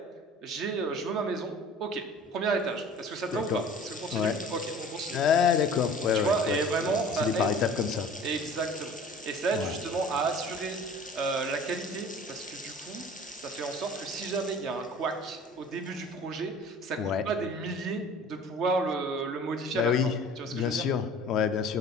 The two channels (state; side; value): normal; both; correlation 0.45